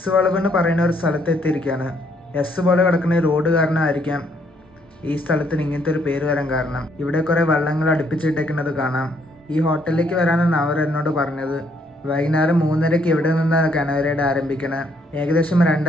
വളവ് എന്ന് പറയുന്ന ഒരു സ്ഥലത്ത് എത്തിയിരിക്കുകയാണ്. എസ് പോലെ കിടക്കുന്ന ഈ റോഡ് കാരണമായിരിക്കാം ഈ സ്ഥലത്തിന് ഇങ്ങനത്തെ ഒരു പേര് വരാൻ കാരണം. ഇവിടെ കുറേ വള്ളങ്ങൾ അടുപ്പിച്ചിട്ടേക്കുന്നത് കാണാം. ഈ ഹോട്ടലിലേക്ക് വരാനാണ് അവർ എന്നോട് പറഞ്ഞത്. വൈകുന്നേരം 3:30 ഇവിടെ നിന്നാണ് കനോയ് റൈഡ് ആരംഭിക്കണത്. ഏകദേശം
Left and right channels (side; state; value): both; normal; correlation 0.69